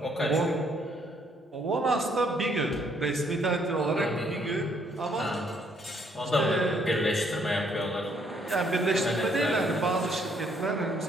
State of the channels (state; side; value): normal; both; correlation 0.68